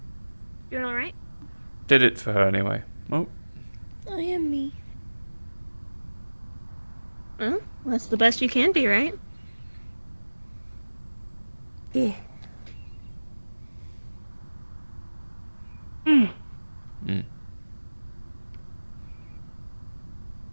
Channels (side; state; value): both; inverted; correlation -1.00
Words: Doing alright? Did it for her anyway. Oh. I am me. Well, that's the best you can be, right? Yeah. Mm. Mm.